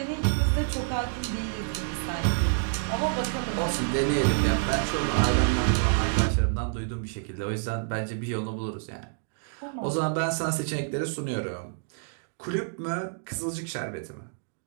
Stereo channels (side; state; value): left; silent; digital silence